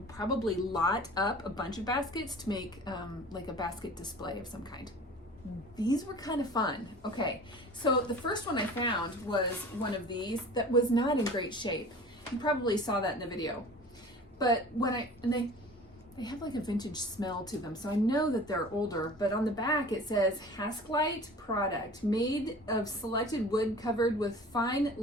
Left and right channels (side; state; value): both; normal; correlation 0.42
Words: probably lot up a bunch of baskets to make like a basket display of some kind. These were kind of fun. Okay, so the first one I found was one of these that was not in great shape. You probably saw that in the video. But when they have like a vintage smell to them, so I know that they're older, but on the back it says Hasklite product made of selected wood covered with fine